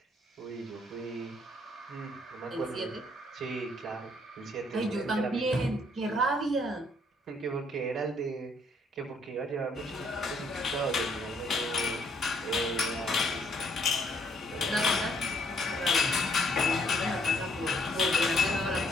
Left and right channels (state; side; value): normal; both; correlation 0.67